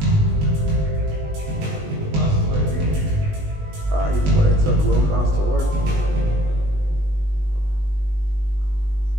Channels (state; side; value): late; left; 20 ms